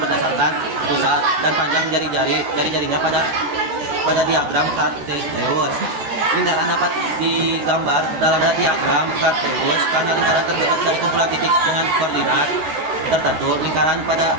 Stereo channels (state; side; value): late; left; 14 ms